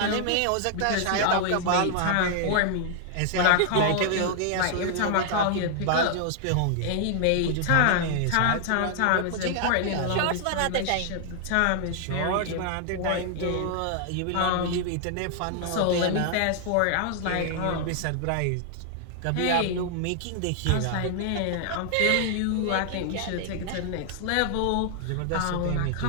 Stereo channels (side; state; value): both; different; correlation 0.00